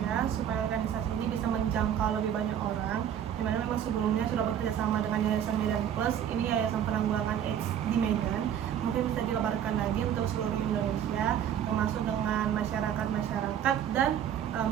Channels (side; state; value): left; quieter; 9.6 dB